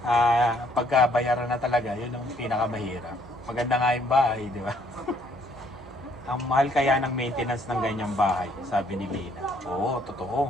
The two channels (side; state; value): both; normal; correlation 0.66